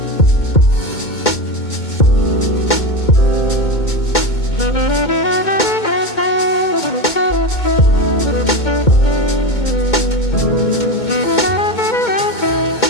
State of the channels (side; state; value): right; late; 2.2 ms